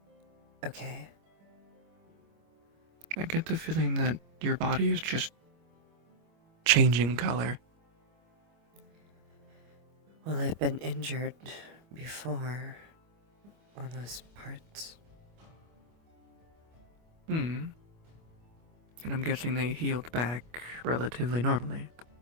Okay. I get the feeling that your body is just changing color. Well, I've been injured before on those parts. And I'm guessing they healed back relatively normally.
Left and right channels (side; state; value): left; late; 25 ms